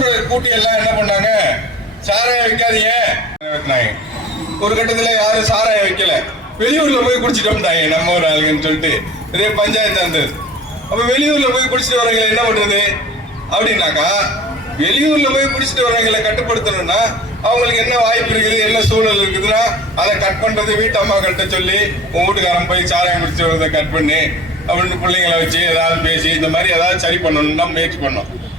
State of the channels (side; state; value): both; normal; correlation 0.42